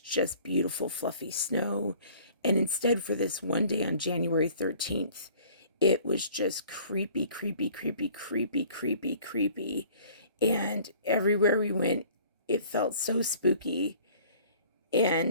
beautiful, fluffy snow. And instead, for this one day on January 13th, it was just creepy, creepy, creepy, creepy, creepy, creepy. And everywhere we went, it felt so spooky.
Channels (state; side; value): inverted; both; correlation -0.52